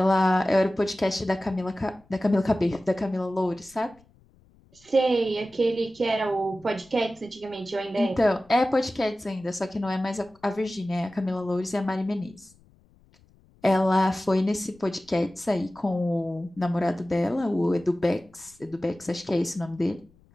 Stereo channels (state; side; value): noise; left; rumble, 30 dB below the sound